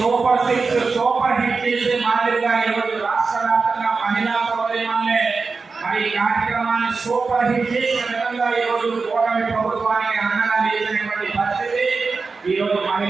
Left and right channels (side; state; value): left; quieter; 4.4 dB